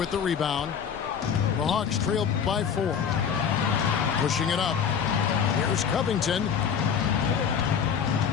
the rebound. The Hawks trail by 4. Pushing it up. Here's Covington.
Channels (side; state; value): right; quieter; 7.3 dB